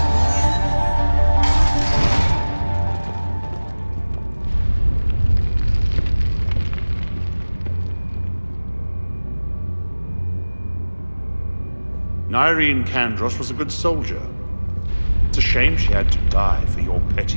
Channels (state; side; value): inverted; both; correlation -1.00